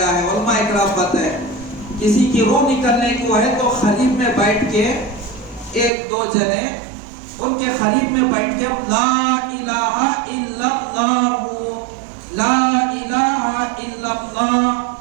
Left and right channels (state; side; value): drops out; left; at 5.9 s